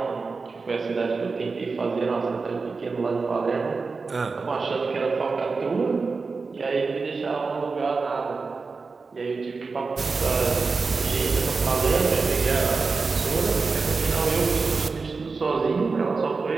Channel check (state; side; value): quieter; left; 4.4 dB